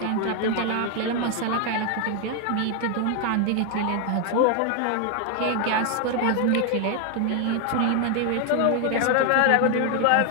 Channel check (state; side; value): different; both; correlation 0.00